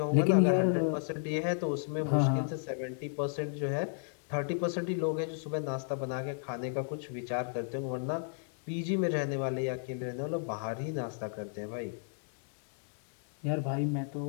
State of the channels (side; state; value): right; silent; digital silence